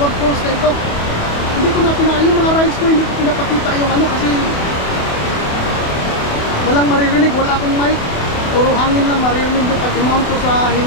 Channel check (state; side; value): late; right; 28 ms